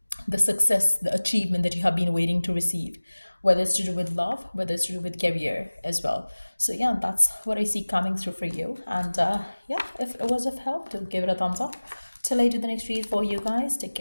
the success, the achievement that you have been waiting to receive, whether it's to do with love, whether it's to do with career as well. So yeah, that's what I see coming through for you. And yeah, if it was of help, do give it a thumbs up. Till I do the next read for you guys, take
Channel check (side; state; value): both; inverted; correlation -1.00